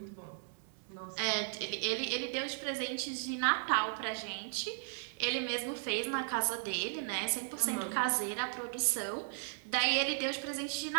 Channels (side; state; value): left; silent; 54 dB below the other